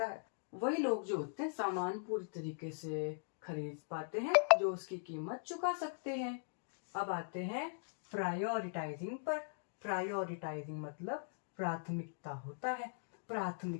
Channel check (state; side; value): silent; right; digital silence